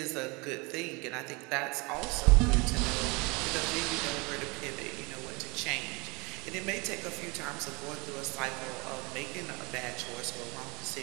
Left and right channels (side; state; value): left; quieter; 27.4 dB